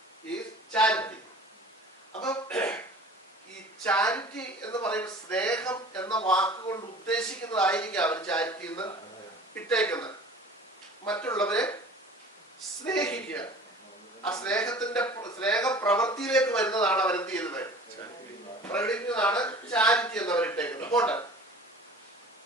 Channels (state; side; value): normal; both; correlation 0.44